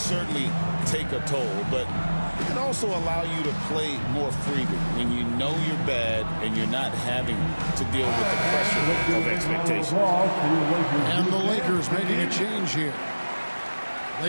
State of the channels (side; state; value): both; inverted; correlation -1.00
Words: take a toll. But it can also allow you to play more freely when you know you're bad and you're not having to deal with the pressure of expectations. And the Lakers making a change here.